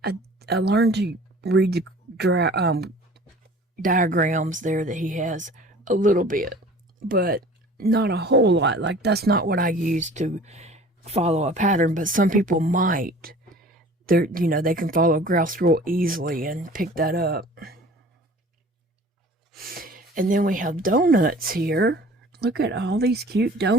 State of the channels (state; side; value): normal; both; correlation 0.46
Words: I learned to read the diagrams there that he has a little bit, but not a whole lot. Like, that's not what I use to follow a pattern, but some people might. You know, they can follow graphs real easily and pick that up. And then we have donuts here. Look at all these cute